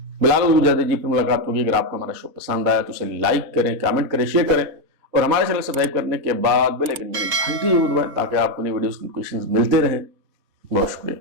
بلال اجازت دیجیے، پھر ملاقات ہوگی۔ اگر آپ کو ہمارا شو پسند آیا تو اسے لائک کریں، کامنٹ کریں، شیئر کریں، اور ہمارے چینل سبسکرائب کرنے کے بعد بیل آئکن یعنی گھنٹی ضرور دبائیں تاکہ آپ کو نئی ویڈیوز کی نوٹیفیکیشنز ملتے رہیں۔ بہت شکریہ۔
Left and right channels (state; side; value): late; left; 4.3 ms